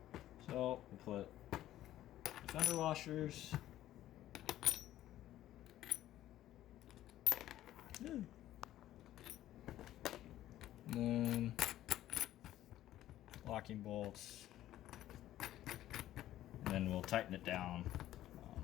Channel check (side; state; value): right; quieter; 13.5 dB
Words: So we'll put fender washers. And then locking bolts. And then we'll tighten it down.